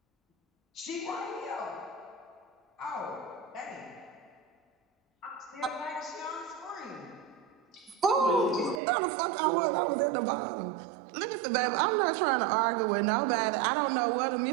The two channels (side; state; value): left; drops out; at 8.8 s